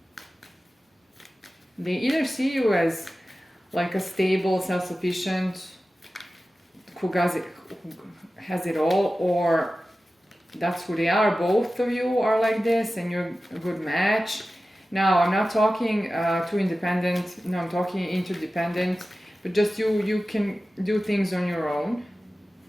They either see you as like a stable, self-sufficient, who has it all, or that's who they are. Both of you are like this, and you're a good match. Now, I'm not talking too independent. No, I'm talking interdependent. But just you can do things on your own.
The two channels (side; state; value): both; normal; correlation 0.95